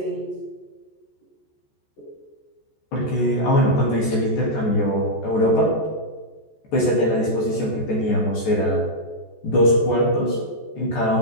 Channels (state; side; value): late; right; 14 ms